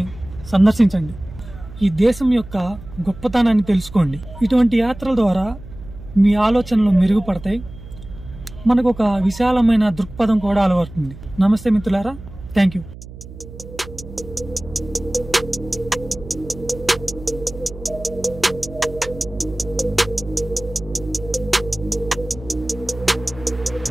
సందర్శించండి. ఈ దేశం యొక్క గొప్పతనాన్ని తెలుసుకోండి. ఇటువంటి యాత్రల ద్వారా మీ ఆలోచనలు మెరుగుపడతాయి. మనకు ఒక విశాలమైన దృక్పథం కూడా అలవడుతుంది. నమస్తే మిత్రులారా, థ్యాంక్ యూ.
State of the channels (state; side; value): noise; right; hum, 15 dB below the sound